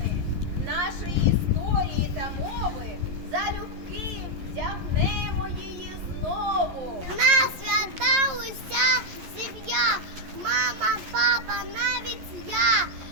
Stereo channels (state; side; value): late; left; 11 ms